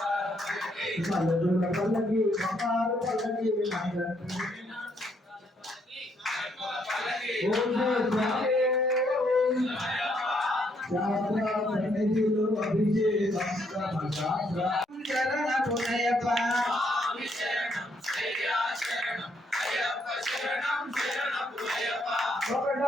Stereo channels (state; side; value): normal; both; correlation 0.72